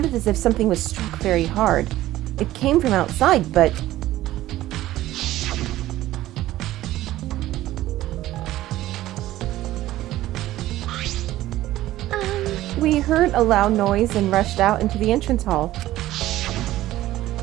as if something was struck very hard. It came from outside, but... We heard a loud noise and rushed out into the entrance hall.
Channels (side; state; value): left; quieter; 15.1 dB